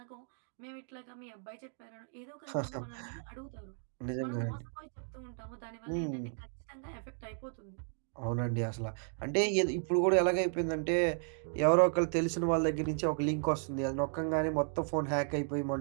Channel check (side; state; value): left; silent; 55 dB below the other